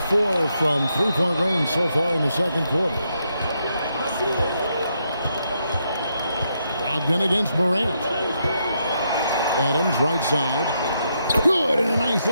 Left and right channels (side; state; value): both; inverted; correlation -0.79